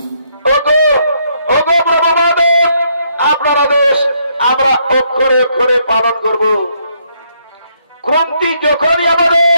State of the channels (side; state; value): both; inverted; correlation -0.73